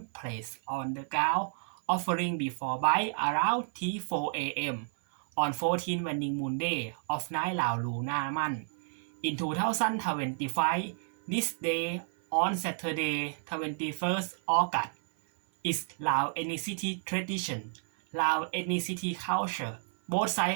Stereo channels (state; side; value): silent; left; 57 dB below the other